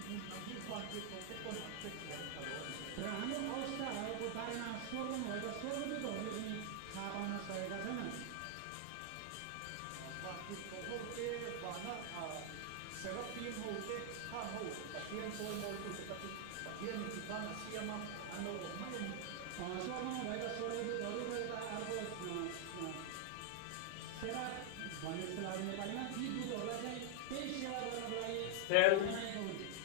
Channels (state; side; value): different; both; correlation -0.01